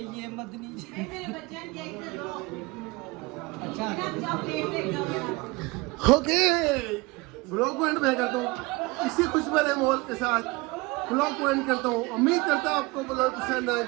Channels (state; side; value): quieter; left; 23.9 dB